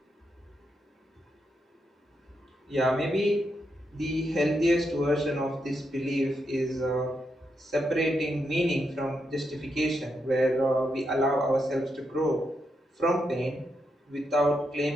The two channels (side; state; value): both; normal; correlation 0.82